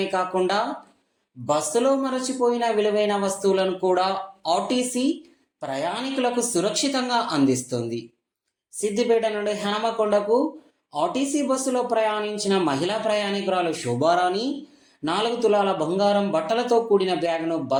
కాకుండా బస్సులో మరచిపోయిన విలువైన వస్తువులను కూడా ఆర్టీసీ ప్రయాణికులకు సురక్షితంగా అందిస్తుంది. సిద్దిపేట నుండి హనుమకొండకు ఆర్టీసీ బస్సులో ప్రయాణించిన మహిళా ప్రయాణికురాలు శోభారాణి 4 తులాల బంగారం బట్టలతో కూడిన బ్యాగ్ను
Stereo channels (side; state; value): both; identical; correlation 1.00